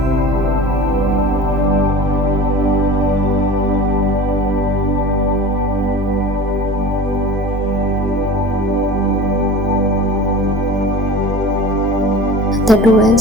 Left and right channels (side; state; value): both; normal; correlation 0.38